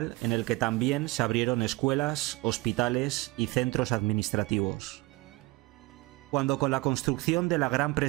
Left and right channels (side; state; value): left; quieter; 22.9 dB